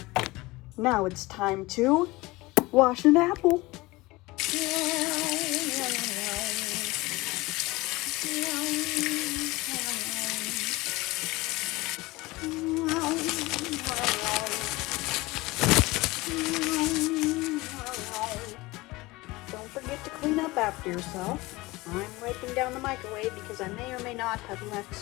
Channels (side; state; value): right; quieter; 21.3 dB